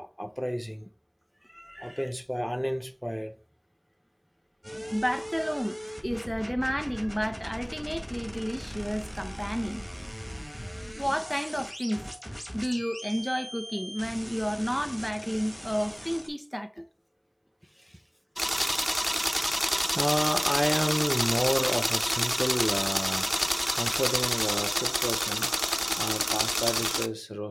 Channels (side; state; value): both; identical; correlation 1.00